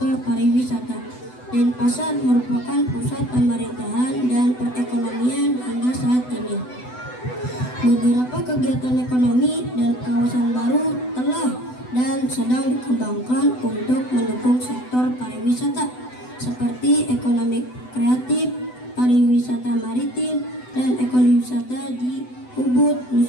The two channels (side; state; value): right; late; 8.0 ms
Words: pariwisata. Denpasar merupakan pusat pemerintahan dan perekonomian hingga saat ini. Beberapa kegiatan ekonomi dan kawasan baru telah dan sedang dikembangkan untuk mendukung sektor pariwisata seperti ekonomi kreatif, pariwisata maritim, dan ekowisata di Ubud,